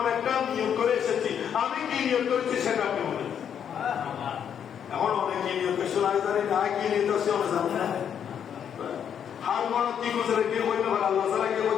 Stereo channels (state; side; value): quieter; right; 8.5 dB